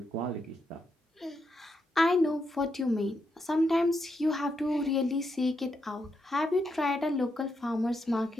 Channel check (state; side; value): normal; both; correlation 0.82